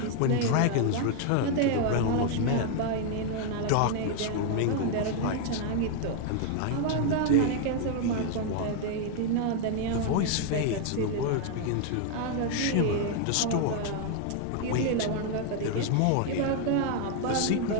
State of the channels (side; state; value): both; different; correlation 0.00